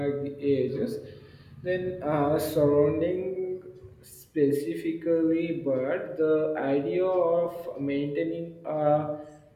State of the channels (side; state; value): both; identical; correlation 1.00